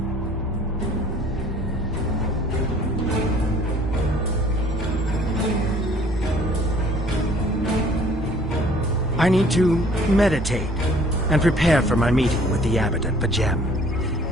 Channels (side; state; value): both; normal; correlation 0.56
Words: I need to meditate and prepare for my meeting with the abbot at Pajem.